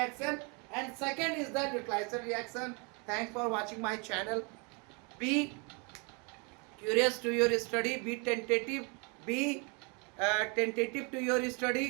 and second is the neutralization reaction. Thanks for watching my channel. Be curious to your study, be tentative to your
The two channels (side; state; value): left; quieter; 32.8 dB